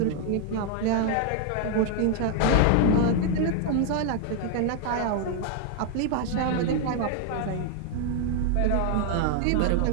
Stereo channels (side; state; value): both; different; correlation 0.00